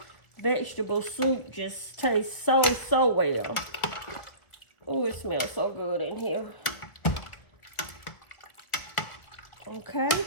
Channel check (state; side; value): late; right; 1.8 ms